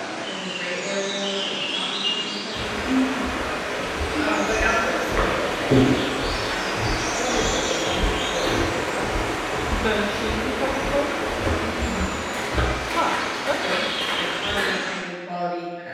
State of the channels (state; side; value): identical; both; correlation 1.00